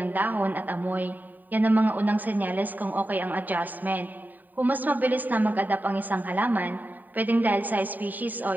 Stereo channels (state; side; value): late; left; 0.087 ms